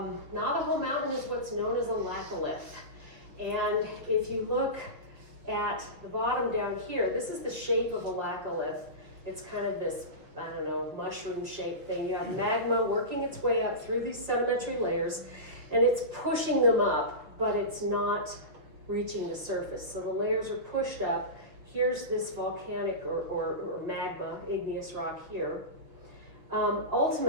Navajo Mountain is what's known as a laccolith. And if you look at the bottom down here, this is the shape of a laccolith. It's kind of this, I don't know, mushroom-shaped thing. You have magma working its way up through these sedimentary layers, and it's pushing them up, but it's not reaching the surface. So the layers are pushed up. Here's this volcanic or magma, igneous rock here.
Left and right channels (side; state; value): left; late; 5.8 ms